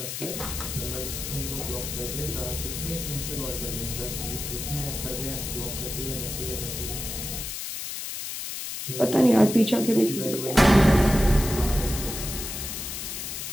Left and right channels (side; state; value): left; noise; hiss, 6 dB below the sound